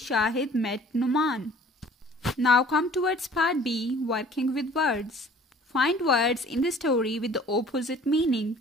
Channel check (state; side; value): normal; both; correlation 0.51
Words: met Numan. Now come towards part B, working with words. Find words in the story with the opposite meaning.